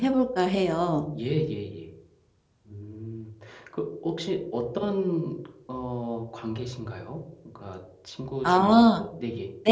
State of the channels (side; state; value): both; identical; correlation 1.00